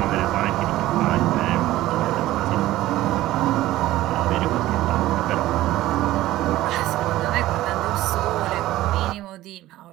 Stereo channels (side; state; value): left; quieter; 15.7 dB